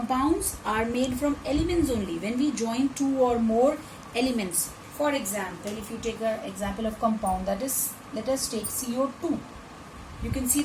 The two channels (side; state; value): both; identical; correlation 1.00